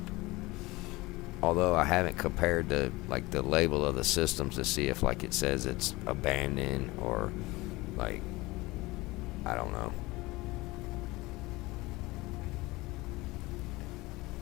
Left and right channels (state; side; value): quieter; right; 21.3 dB